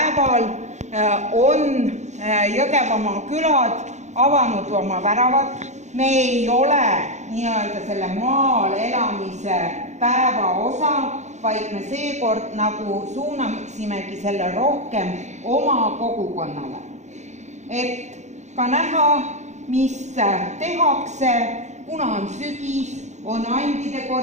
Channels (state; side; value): late; left; 0.34 ms